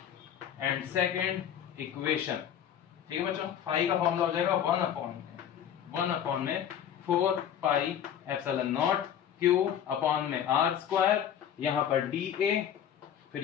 and second equation, ठीक है बच्चों, फाई का फॉर्मूला हो जाएगा 1 अपॉन में 4 pi epsilon not Q upon में r², यहां पर dA, फिर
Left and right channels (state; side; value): quieter; right; 9.4 dB